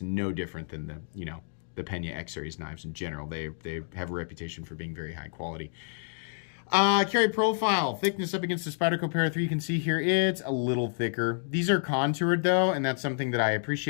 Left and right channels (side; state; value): right; silent; digital silence